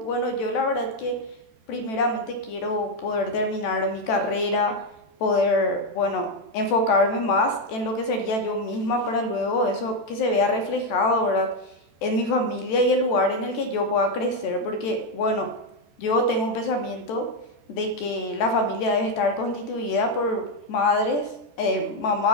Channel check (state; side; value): late; right; 14 ms